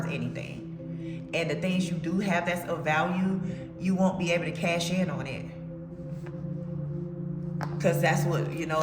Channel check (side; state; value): both; identical; correlation 1.00